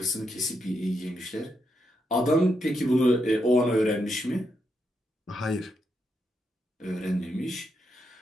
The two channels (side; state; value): both; normal; correlation 0.82